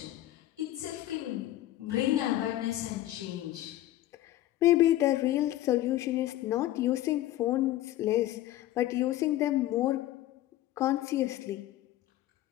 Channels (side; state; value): right; quieter; 14.6 dB